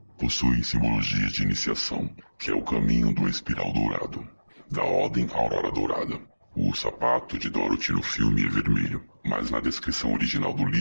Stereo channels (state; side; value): inverted; both; correlation -1.00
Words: Possui simbologia de iniciação, que é o caminho do espiral dourado, da Ordem Aurora Dourada. O sapato de Dorothy no filme é vermelho, mas na descrição original do